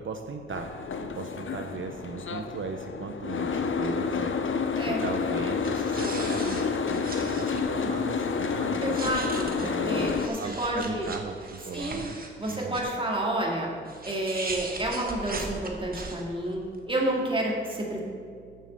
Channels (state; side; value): noise; right; hum, 21 dB below the sound